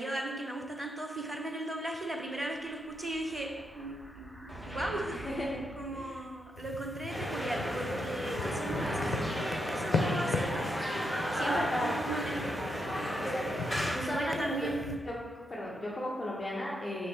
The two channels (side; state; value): both; normal; correlation 0.81